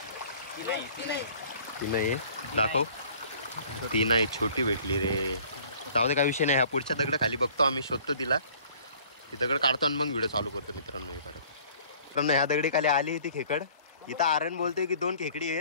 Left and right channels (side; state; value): both; inverted; correlation -0.53